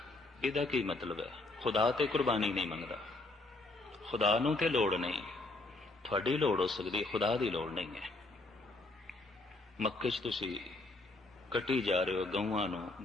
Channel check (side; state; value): right; quieter; 3.0 dB